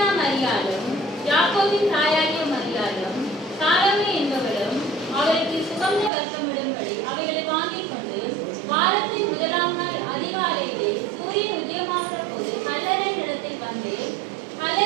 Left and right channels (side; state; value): left; drops out; at 6.1 s